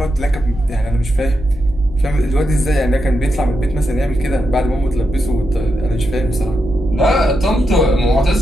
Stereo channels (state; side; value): normal; both; correlation 0.85